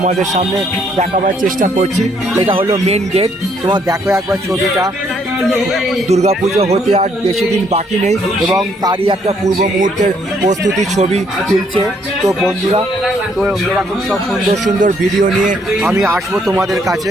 সামনে দেখাবার চেষ্টা করছি। এটা হলো মেন গেট। তোমার দেখো একবার ছবিটা। দুর্গাপুজো হতে আর বেশি দিন বাকি নেই এবং তারই একটা পূর্ব মুহূর্তের প্রস্তুতির ছবি তুলছে। তো বন্ধুরা, তো এরকম সব সুন্দর সুন্দর ভিডিও নিয়ে আমি আসবো তোমাদের কাছে।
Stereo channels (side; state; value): both; normal; correlation 0.69